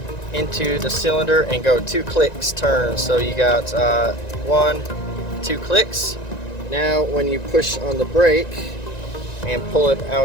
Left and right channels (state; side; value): late; right; 1.9 ms